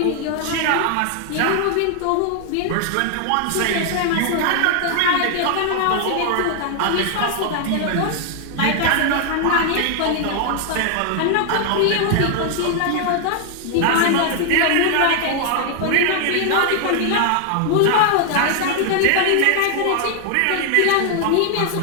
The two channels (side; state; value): both; different; correlation 0.00